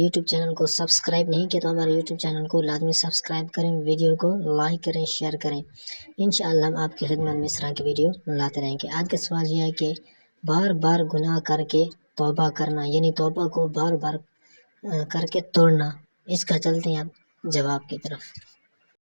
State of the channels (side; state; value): both; inverted; correlation -1.00